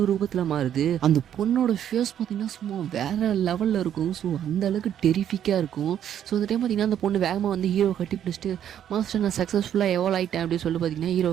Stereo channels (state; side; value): quieter; left; 10.0 dB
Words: ரூபத்தில் மாறுது. அந்த பொண்ணோட ஃபேஸ் பார்த்தீங்கன்னா சும்மா வேறு லெவலில் இருக்கும். ஸோ அந்த அளவுக்கு டெரிஃபிக்காக இருக்கும். ஸோ அந்த டைம் பார்த்தீங்கன்னா அந்த பொண்ணு வேகமாக வந்து ஹீரோவை கட்டி பிடிச்சிட்டு மாஸ்டர் நான் சக்ஸஸ்ஃபுல்லாக எவால்வ் ஆகிட்டேன் அப்படின்னு சொல்லி பார்த்தீங்கன்னா